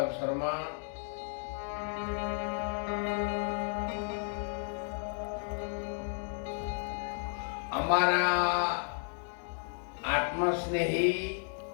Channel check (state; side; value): silent; right; 56 dB below the other